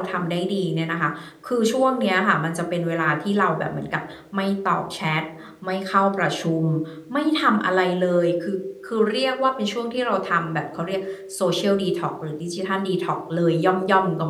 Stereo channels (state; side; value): identical; both; correlation 1.00